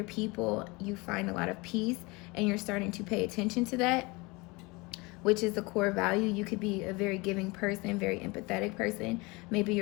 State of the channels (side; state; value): right; quieter; 25.4 dB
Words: people, you find a lot of peace and you're starting to pay attention to that, which is a core value. You could be a very giving person, very empathetic person. Maybe